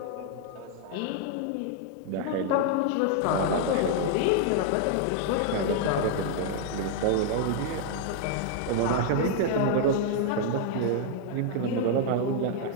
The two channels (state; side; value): different; both; correlation 0.00